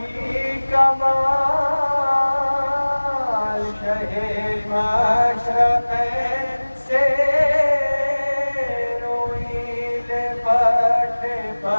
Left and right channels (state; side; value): inverted; both; correlation -1.00